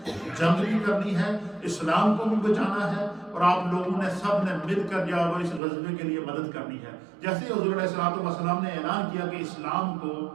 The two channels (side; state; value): left; drops out; at 5.6 s